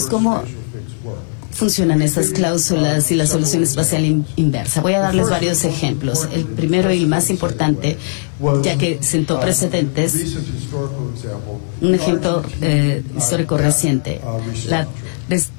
¿cómo funcionan estas cláusulas y la solución espacial inversa? Voy a darles varios ejemplos. El primero y el más importante, ya que sentó precedentes, un ejemplo histórico reciente, la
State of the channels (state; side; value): silent; right; digital silence